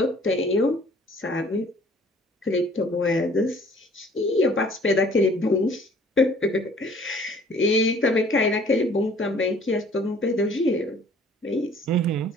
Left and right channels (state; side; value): normal; both; correlation 0.55